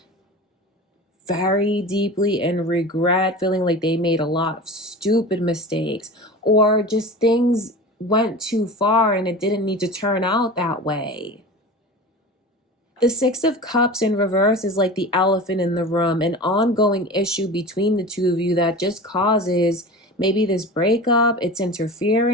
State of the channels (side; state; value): both; normal; correlation 0.33